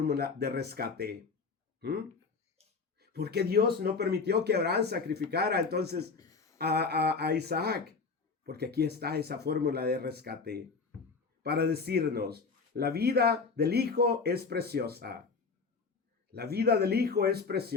de rescate. ¿Por qué Dios no permitió que Abraham sacrificara entonces a Isaac? Porque aquí está esa fórmula de rescate para decirnos, la vida del Hijo es preciosa. La vida del Hijo es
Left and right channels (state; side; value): quieter; right; 4.7 dB